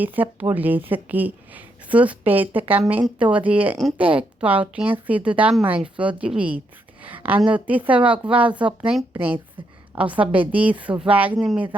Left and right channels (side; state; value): both; normal; correlation 0.78